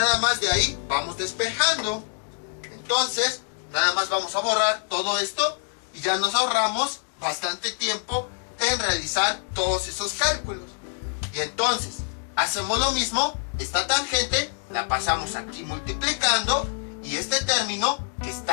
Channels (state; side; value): silent; right; 61 dB below the other